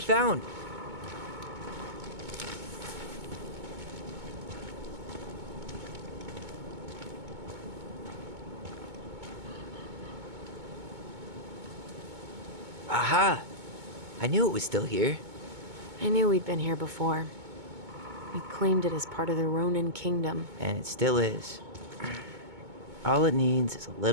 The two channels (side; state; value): left; late; 2.2 ms